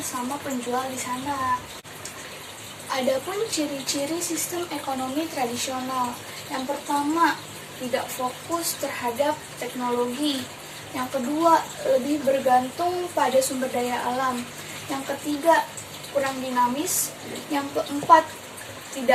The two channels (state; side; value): identical; both; correlation 1.00